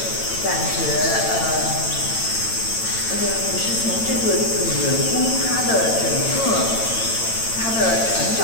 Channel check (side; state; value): right; late; 9.0 ms